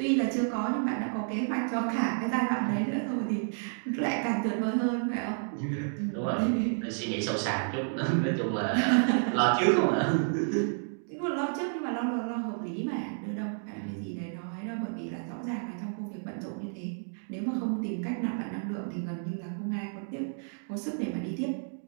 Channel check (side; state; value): left; silent; digital silence